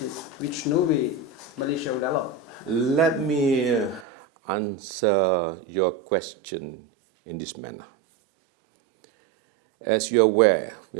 which no way Malaysia would allow? Let me answer your question in this manner. As you're aware, we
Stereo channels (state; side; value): drops out; left; at 4.0 s